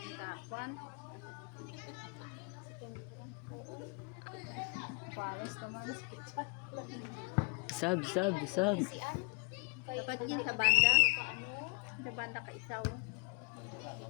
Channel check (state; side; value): quieter; right; 35.0 dB